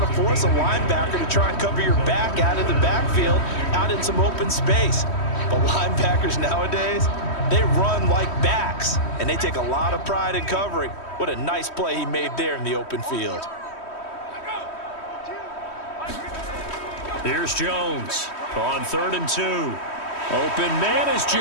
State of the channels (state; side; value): late; right; 3.1 ms